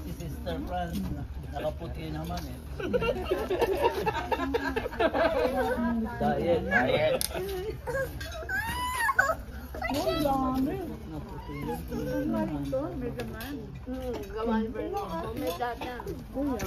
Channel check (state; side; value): identical; both; correlation 1.00